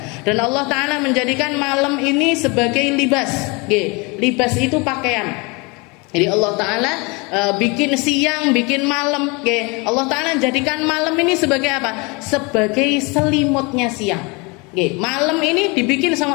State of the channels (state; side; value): quieter; right; 28.3 dB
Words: Dan Allah Ta'ala menjadikan malam ini sebagai libas. Libas itu pakaian. Jadi Allah Ta'ala bikin siang, bikin malam. Allah Ta'ala jadikan malam ini sebagai apa? Sebagai selimutnya siang. Malam ini dibikin